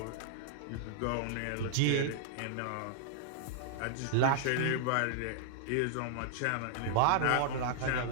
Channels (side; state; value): both; different; correlation -0.01